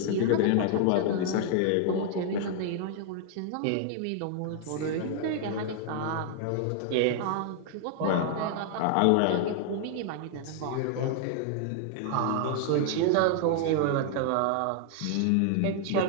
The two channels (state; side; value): different; both; correlation 0.00